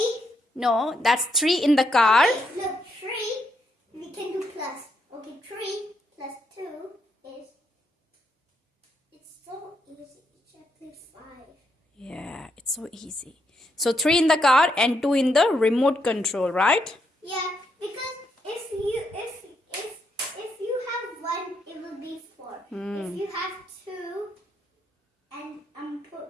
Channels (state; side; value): normal; both; correlation 0.78